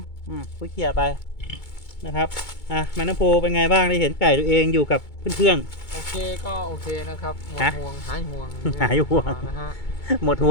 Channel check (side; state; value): right; late; 2.2 ms